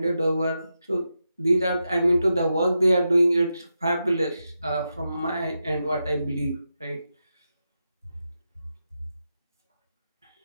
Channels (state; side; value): inverted; both; correlation -0.88